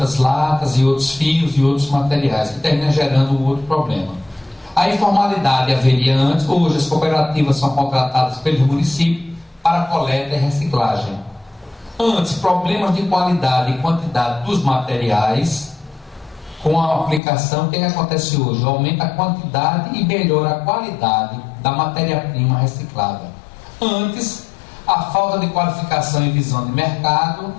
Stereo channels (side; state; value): right; drops out; at 17.2 s